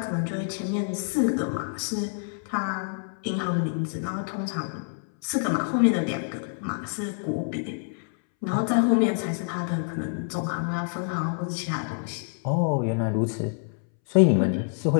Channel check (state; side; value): silent; right; 60 dB below the other